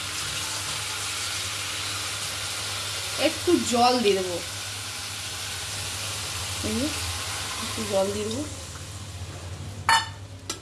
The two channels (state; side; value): identical; both; correlation 1.00